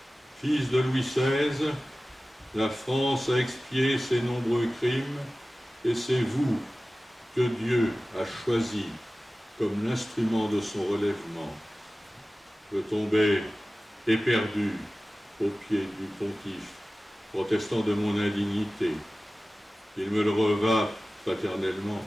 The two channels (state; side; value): normal; both; correlation 0.96